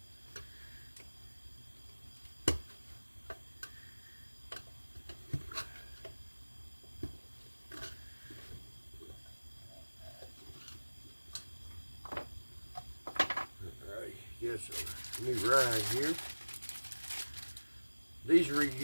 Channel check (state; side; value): inverted; both; correlation -1.00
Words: this new ride here. These